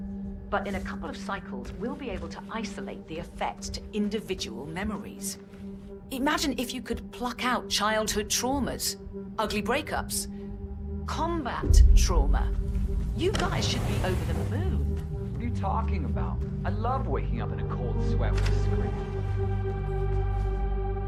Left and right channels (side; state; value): both; identical; correlation 1.00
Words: But in a couple of cycles, we'll be able to isolate the effects to individual memories. Imagine if you could pluck out childhood traumas, ugly breakups, combat trauma. You guys should be over the moon. What are you talking about? I love waking up in a cold sweat with a script.